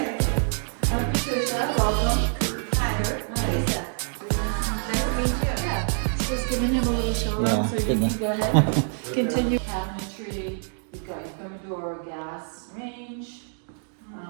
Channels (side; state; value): left; silent; 61 dB below the other